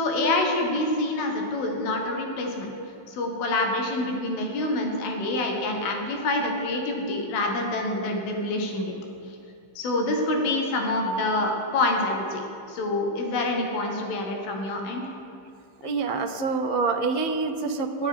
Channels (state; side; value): late; right; 15 ms